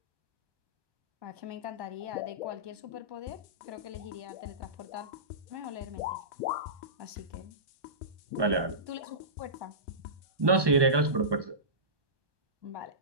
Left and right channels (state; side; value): late; left; 1.2 ms